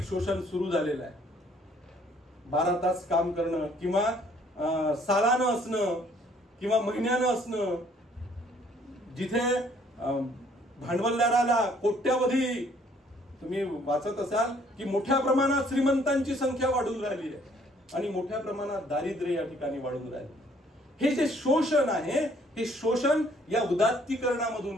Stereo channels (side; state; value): both; normal; correlation 0.62